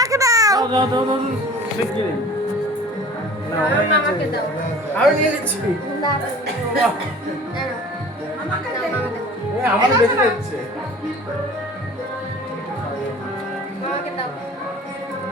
দাও। আমি নিয়ে নিচ্ছি আমার বেশি যাচ্ছে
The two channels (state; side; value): normal; both; correlation 0.44